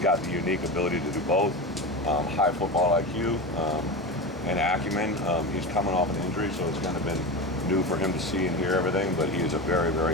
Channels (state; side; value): normal; both; correlation 0.24